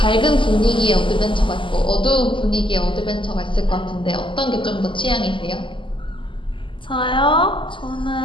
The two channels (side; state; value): right; late; 0.25 ms